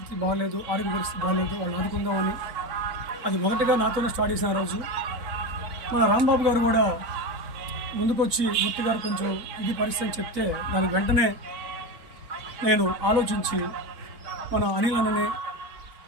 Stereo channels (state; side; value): late; left; 4.1 ms